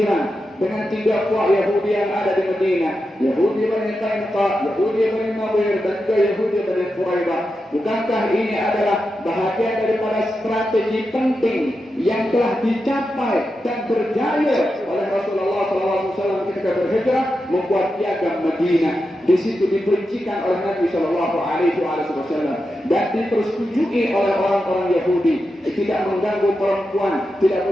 dengan tiga puak Yahudi yang ada di Madinah, Yahudi Bani Qainuqa, Yahudi Bani Nadir, dan juga Yahudi Bani Quraidah. Bukankah ini adalah bahagian daripada strategi penting yang telah dicapai dan berjaya oleh Rasulullah SAW ketika berhijrah membuat piagam Madinah? Di situ diperincikan oleh Nabi SAW dan dipersetujui oleh orang-orang Yahudi. Tidak mengganggu perempuan, tidak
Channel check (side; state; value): both; normal; correlation 0.89